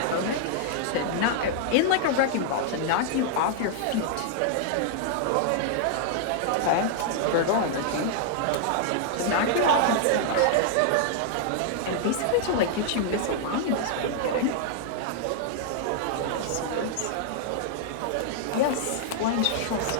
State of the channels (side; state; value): both; different; correlation -0.01